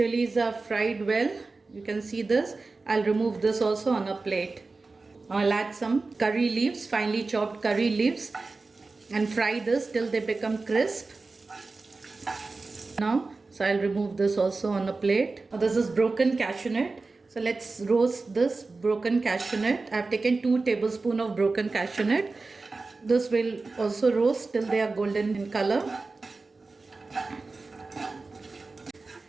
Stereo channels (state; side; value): quieter; left; 3.7 dB